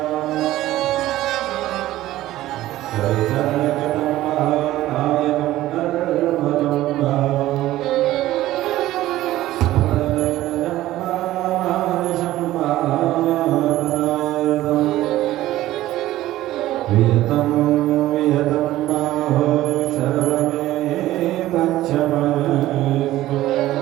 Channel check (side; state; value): left; quieter; 15.3 dB